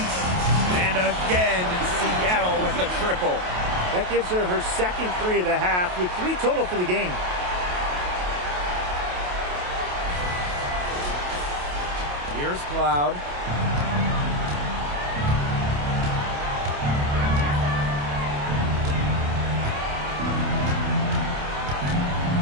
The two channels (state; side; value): late; left; 28 ms